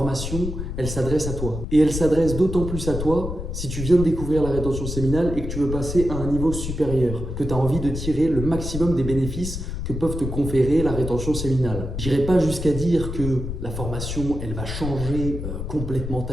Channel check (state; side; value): noise; left; rumble, 5 dB below the sound